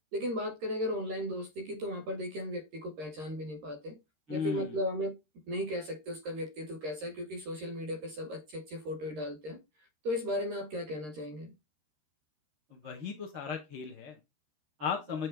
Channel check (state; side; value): late; left; 13 ms